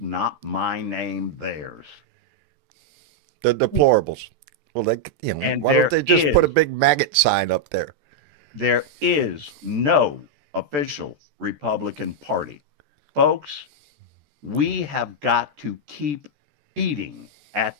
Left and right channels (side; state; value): left; late; 14 ms